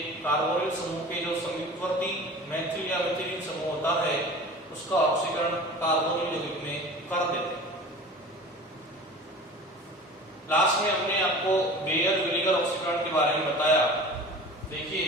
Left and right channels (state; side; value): normal; both; correlation 0.39